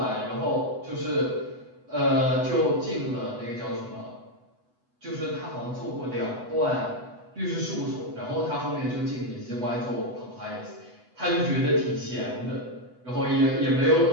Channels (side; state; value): left; late; 8.1 ms